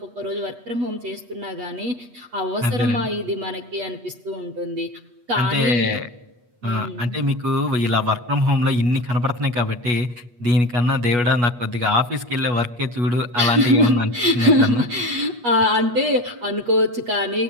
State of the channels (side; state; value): left; late; 8.3 ms